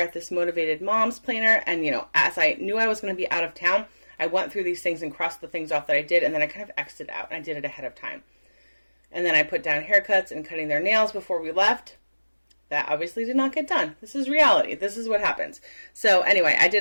this Motivated Moms planner. And, as I knew I was going to be out of town, I went through these things and crossed the things off that I did, and then I kind of X'd it out, and I did it ahead of time. And then I put down haircuts and cutting their nails before we left. That obviously did not get done. This is reality. This is what happens. So anyway, I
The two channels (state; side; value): inverted; both; correlation -1.00